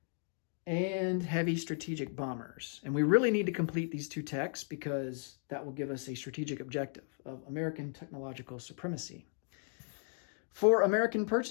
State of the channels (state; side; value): silent; right; 54 dB below the other